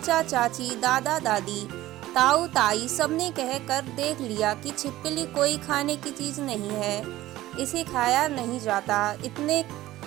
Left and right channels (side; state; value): left; quieter; 15.9 dB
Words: चाची, दादा दादी, ताऊ ताई सबने कहकर देख लिया कि छिपकली कोई खाने की चीज़ नहीं है, इसे खाया नहीं जाता।